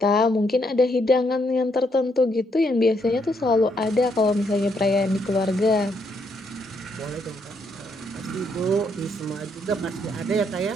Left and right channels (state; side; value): normal; both; correlation 0.74